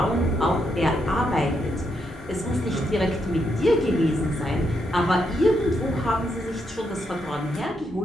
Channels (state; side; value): normal; both; correlation 0.79